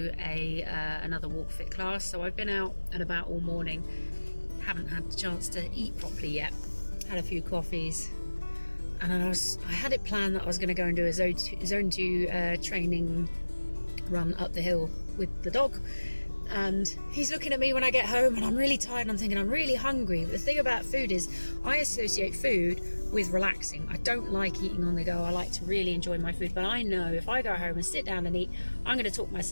another walk fit class. So I've been out and about all morning, haven't had the chance to eat properly yet. Had a few coffees, and I had it planned that I was going to go and do a zone 2 training run up the hill with the dog, and he's looking at me when I get home and I'm really tired and I'm thinking I'm really hungry. But the thing about food is I associate food with relaxing. I don't like eating on the go. I like to really enjoy my food, but I know if I go home and sit down and eat, I'm going to talk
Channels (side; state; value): both; inverted; correlation -1.00